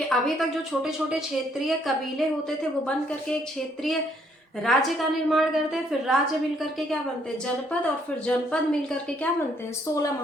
अभी तक जो छोटे छोटे क्षेत्रीय कबीले होते थे वो बन करके एक क्षेत्रीय राज्य का निर्माण करते हैं, फिर राज्य मिल करके क्या बनते हैं, जनपद, और फिर जनपद मिल करके क्या बनते हैं, 16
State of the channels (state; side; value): normal; both; correlation 0.68